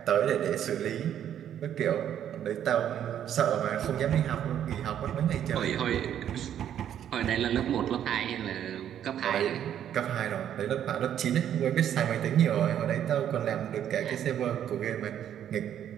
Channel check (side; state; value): left; quieter; 10.1 dB